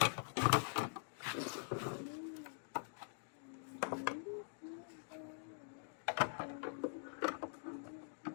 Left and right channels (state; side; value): silent; right; digital silence